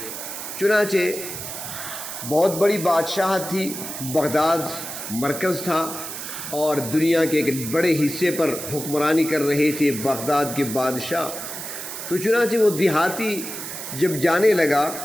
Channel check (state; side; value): noise; right; hiss, 8 dB below the sound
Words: چنانچہ بہت بڑی بادشاہت تھی، بغداد مرکز تھا اور دنیا کے ایک بڑے حصے پر حکمرانی کر رہے تھے بغداد کے بادشاہ۔ تو چنانچہ وہ دیہاتی جب جانے لگا